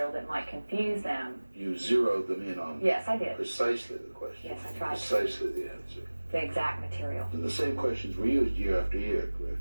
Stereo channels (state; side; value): inverted; both; correlation -1.00